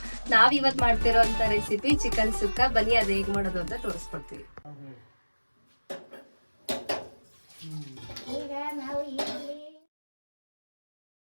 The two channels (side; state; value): both; inverted; correlation -1.00